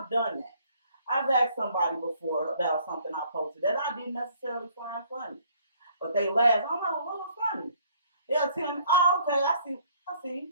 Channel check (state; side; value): inverted; both; correlation -0.61